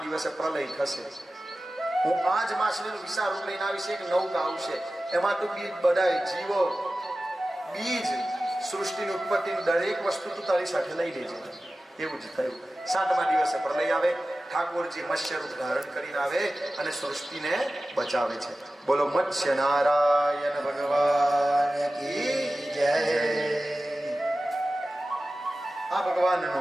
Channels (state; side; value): normal; both; correlation 0.95